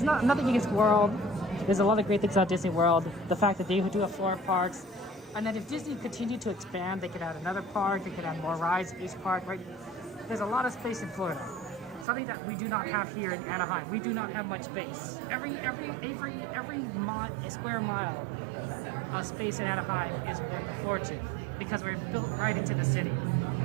nothing against World. There's a lot of great things about Disney World. The fact that they do have 4 parks, and then if Disney continued to expand, they could add another park. They could add more rides at each park. Right? There's a lot of space in Florida. Something that we do not have here in Anaheim. We do not have much space. Every square mile of space in Anaheim is worth a fortune because we're built right into the city.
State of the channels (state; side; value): drops out; left; at 12.1 s